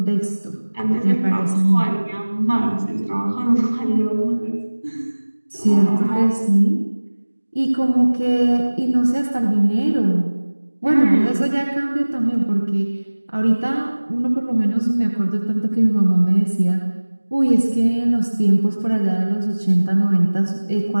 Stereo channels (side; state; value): both; inverted; correlation -1.00